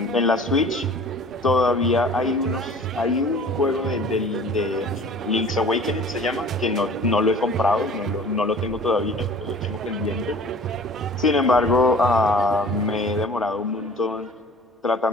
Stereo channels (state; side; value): normal; both; correlation 0.46